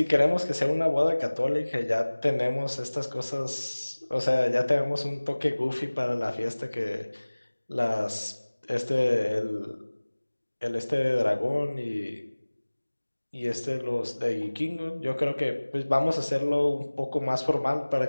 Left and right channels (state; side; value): inverted; both; correlation -1.00